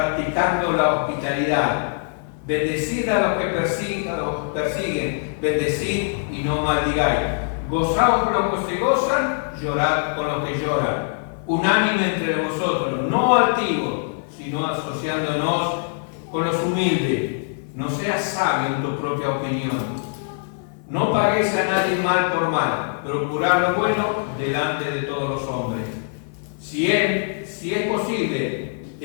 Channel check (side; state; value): right; silent; 56 dB below the other